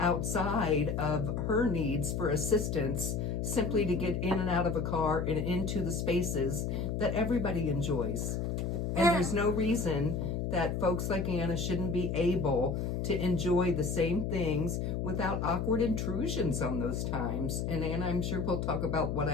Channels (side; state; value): left; noise; hum, 1 dB below the sound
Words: of her needs for assistance, simply to get in and out of a car and into the spaces that everybody enjoys. And there's no reason that folks like Anna shouldn't be able to enjoy the same things without awkward intrusions on those times. And Anna, I'm sure we'll talk about what